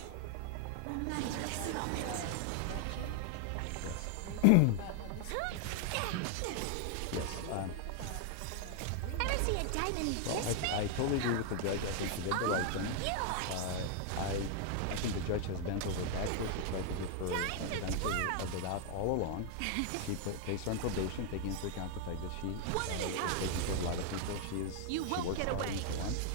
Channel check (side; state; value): both; different; correlation 0.00